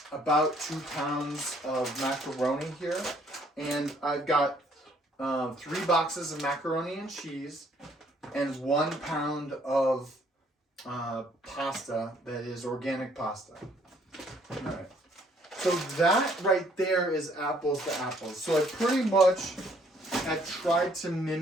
about 2 pounds of macaroni here. And I've got 3 boxes of macaroni and cheese and 1 pound of pasta that is organic pasta. All right. So that right there is apples to apples. So I pretty much had tried to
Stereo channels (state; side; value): normal; both; correlation 0.64